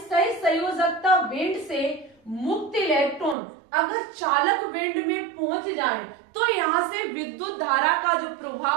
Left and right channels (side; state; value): left; drops out; at 3.4 s